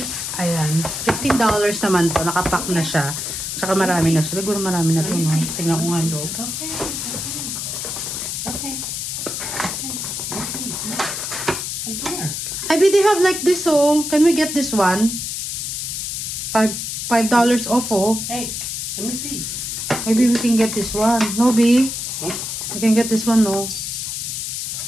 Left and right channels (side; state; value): left; noise; hiss, 4 dB below the sound